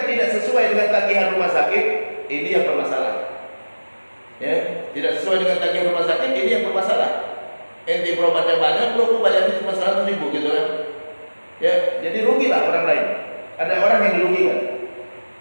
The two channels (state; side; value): inverted; both; correlation -1.00